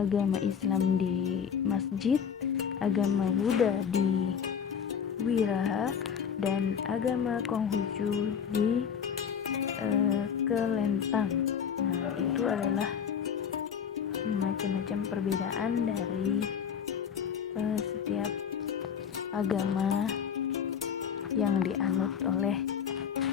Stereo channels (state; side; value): quieter; right; 7.5 dB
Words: Islam di masjid, agama Buddha di wiraha, dan agama Konghucu di kelentang. Nah, itu adalah macam-macam perbedaan dari setiap agama yang dianut oleh